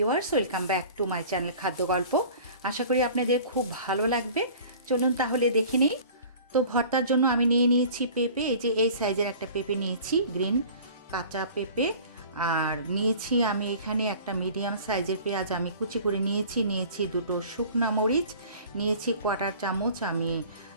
welcome back to my channel খাদ্য গল্প। আশা করি আপনাদের খুব ভালো লাগবে। চলুন তাহলে দেখে নিই। তো ভর্তার জন্য আমি নিয়ে নিয়েছি পেঁপে, এই যে এই সাইজের একটা পেঁপে নিয়েছি, গ্রিন কাঁচা পেঁপে। আর নিয়েছি আমি এখানে একটা মিডিয়াম সাইজের পেঁয়াজ আমি কুচি করে নিয়েছি দুটো শুকনা মরিচ, নিয়েছি কোয়ার্টার চামচ আমি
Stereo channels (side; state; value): both; inverted; correlation -0.45